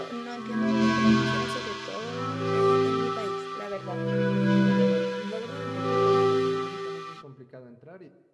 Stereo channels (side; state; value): both; identical; correlation 1.00